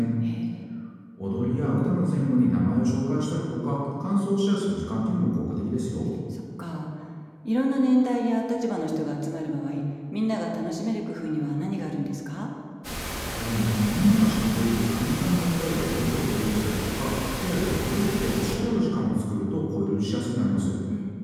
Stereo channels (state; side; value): identical; both; correlation 1.00